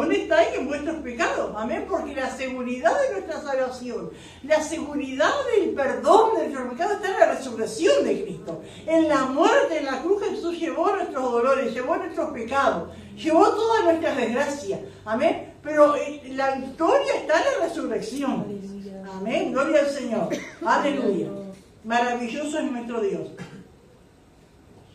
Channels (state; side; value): identical; both; correlation 1.00